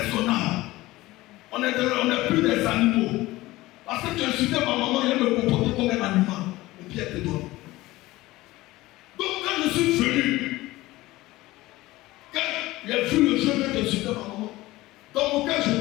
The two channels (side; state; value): right; quieter; 18.4 dB